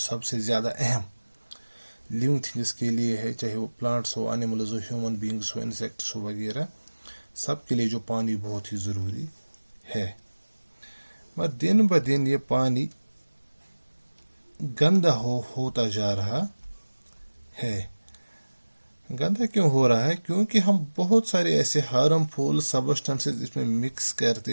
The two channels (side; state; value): both; inverted; correlation -1.00